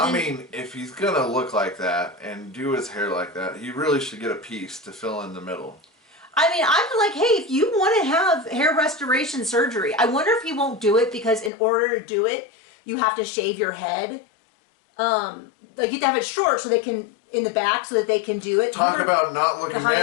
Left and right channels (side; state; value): right; drops out; at 11.5 s